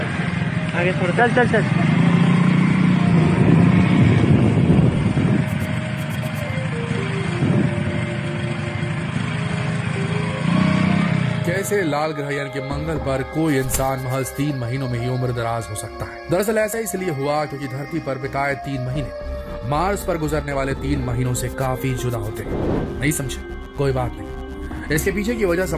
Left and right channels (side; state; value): both; identical; correlation 1.00